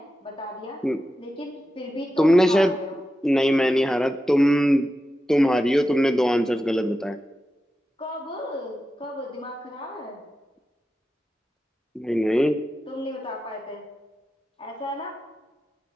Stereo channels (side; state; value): both; normal; correlation 0.91